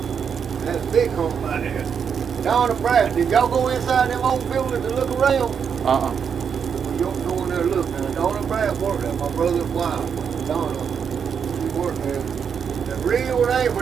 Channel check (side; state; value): left; quieter; 7.0 dB